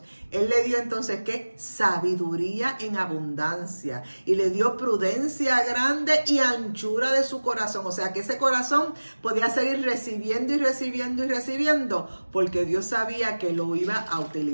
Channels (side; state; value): both; inverted; correlation -1.00